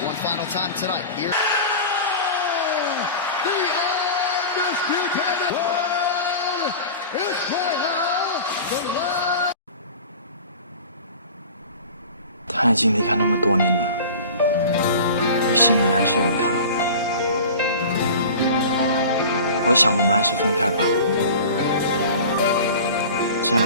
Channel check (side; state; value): both; inverted; correlation -0.37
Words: One final time tonight. Here. The undisputed world Israel, the last. 他已经离开那么多年了，你心里还是有他。我想我们还是分开吧，这